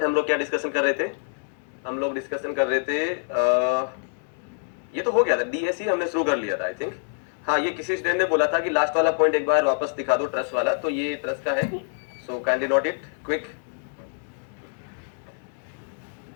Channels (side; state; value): right; silent; digital silence